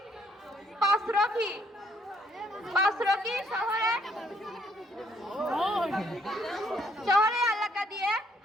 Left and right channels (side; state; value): both; normal; correlation 0.68